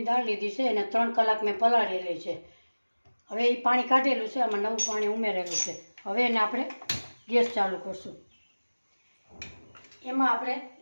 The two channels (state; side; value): inverted; both; correlation -1.00